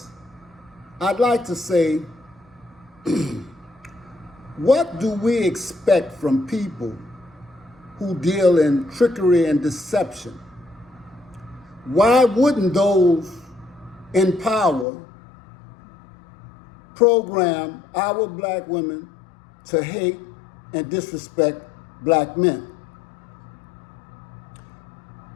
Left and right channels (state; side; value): drops out; right; at 14.9 s